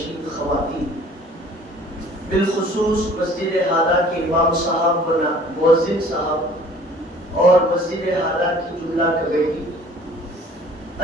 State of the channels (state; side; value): normal; both; correlation 0.51